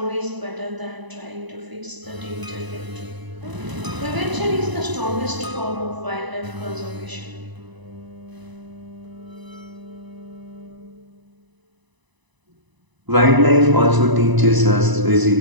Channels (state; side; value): late; left; 1.0 ms